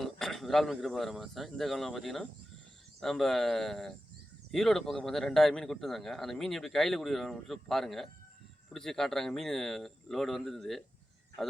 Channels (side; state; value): both; normal; correlation 0.93